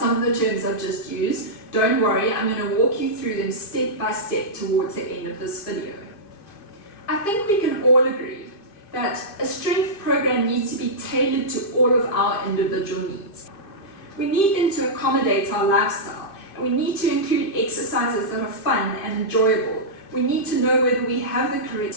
of the terms I've just used, don't worry, I'm going to walk you through them step by step towards the end of this video. I think we can all agree that a strength program needs to be tailored to all of our individual needs. We need them to accommodate our lifestyle, and we need to include exercises that are fun and enjoyable. We need to know whether we have the correct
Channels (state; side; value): late; right; 2.5 ms